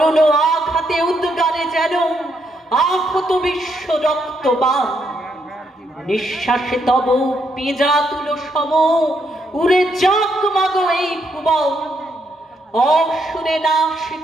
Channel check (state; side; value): normal; both; correlation 0.77